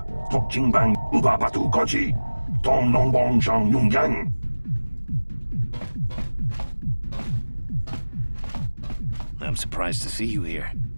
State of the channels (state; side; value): inverted; both; correlation -1.00